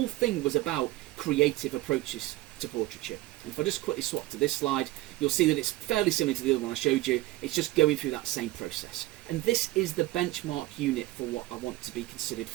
thing was about creative approaches to portraiture. And if I just quickly swap to this slide, you'll see that it's fairly similar to the other one I showed you. It's just going through that same process. And this is the benchmark unit for what I want to be considered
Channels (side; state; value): left; quieter; 18.1 dB